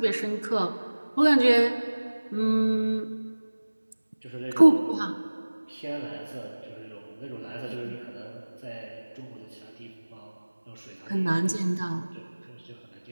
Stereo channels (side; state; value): both; inverted; correlation -1.00